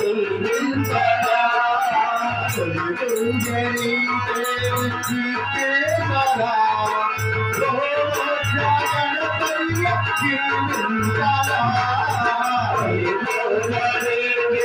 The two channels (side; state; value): both; identical; correlation 1.00